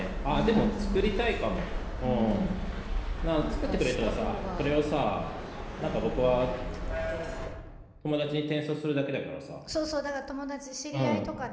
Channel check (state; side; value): identical; both; correlation 1.00